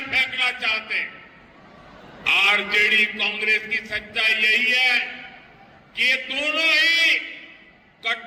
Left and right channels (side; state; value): both; identical; correlation 1.00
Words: फेंकना चाहते हैं। आरजेडी कांग्रेस की सच्चाई यही है कि ये दोनों ही